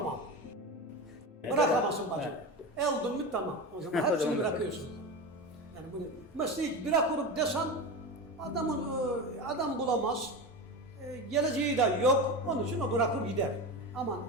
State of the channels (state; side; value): normal; both; correlation 0.23